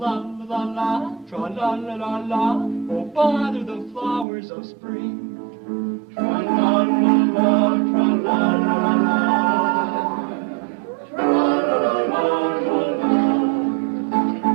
tra-la-la-la-la, oh, bother the flowers of spring. Tra-la-la-la, tra-la-la-la.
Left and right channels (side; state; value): left; drops out; at 4.2 s